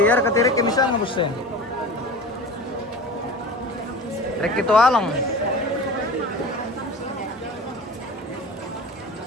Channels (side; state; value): both; normal; correlation 0.35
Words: ya ketirek misalnya bos. Rek itu alang.